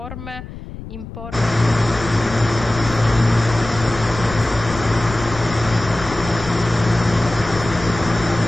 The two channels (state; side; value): noise; left; rumble, 12 dB below the sound